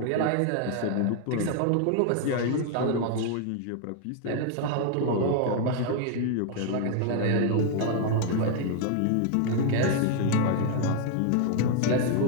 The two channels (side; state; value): both; different; correlation 0.00